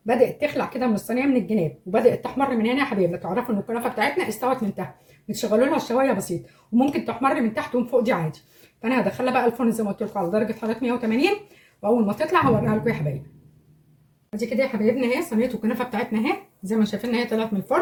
بدات تخلع كده من الصينيه من الجناب وبدات تحمر من هنا يا حبايبنا، تعرفوا ان الكنافه بتاعتنا استوت من تحت. بتشغلوا لها الشوايه بسيط، وممكن تحمر من تحت ومن فوق دي عادي. فانا هدخلها بقى الفرن زي ما قلت لكم على درجه حراره 180، واول ما تطلع هوريها لكم يا حبايبي. ادي كده يا حبايبنا اهي صينيه الكنافه بتاعتنا اهي زي ما شايفين هي طلعت من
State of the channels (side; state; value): both; identical; correlation 1.00